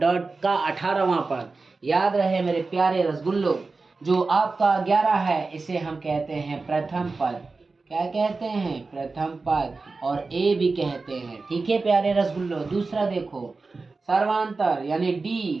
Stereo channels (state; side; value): quieter; left; 3.9 dB